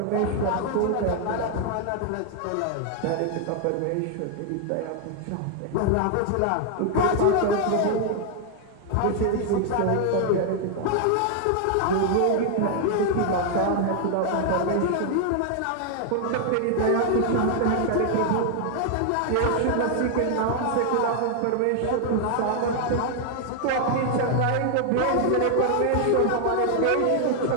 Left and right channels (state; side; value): different; both; correlation 0.00